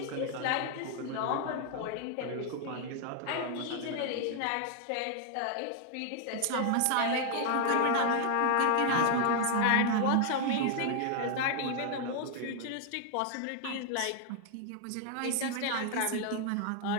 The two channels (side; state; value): both; different; correlation 0.00